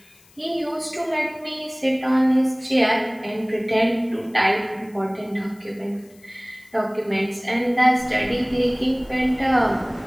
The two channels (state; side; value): noise; left; hiss, 29 dB below the sound